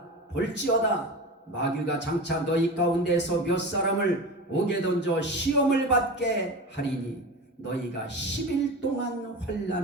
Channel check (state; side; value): normal; both; correlation 0.29